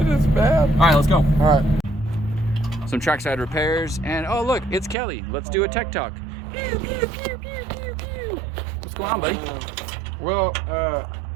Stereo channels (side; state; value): left; drops out; at 5.0 s